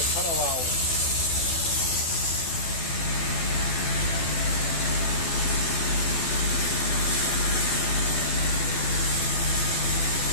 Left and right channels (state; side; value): late; right; 12 ms